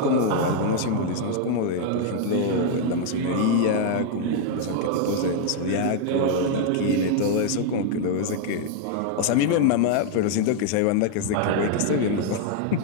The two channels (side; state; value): both; different; correlation 0.00